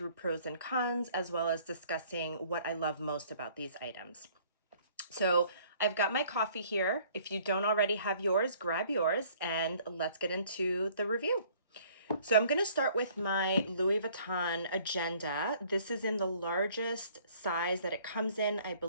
pros and cons, as well as discussing what I love most about these items. So I've got my coffee here. If you don't already have yours, grab yours and let's get into the review. So I'm going to start with my Louis Vuitton agenda. This is in the largest size that it comes in. I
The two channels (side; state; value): both; inverted; correlation -0.57